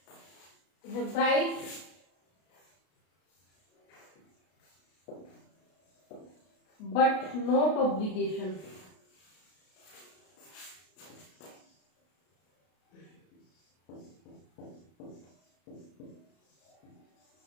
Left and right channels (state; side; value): late; right; 33 ms